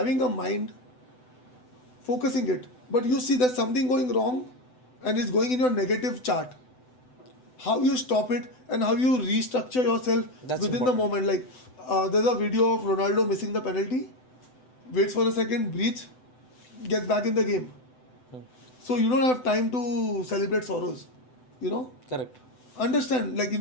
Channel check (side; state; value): right; late; 7.9 ms